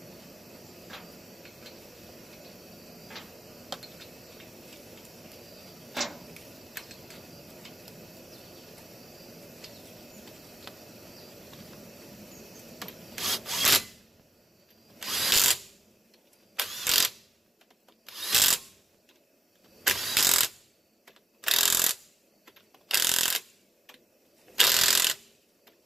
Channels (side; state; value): both; normal; correlation 0.89